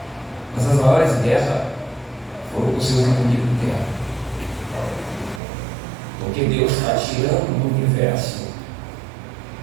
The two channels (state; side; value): drops out; left; at 5.4 s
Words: mas as maiores guerras foram com os seus inimigos internos, porque Deus está tirando do universo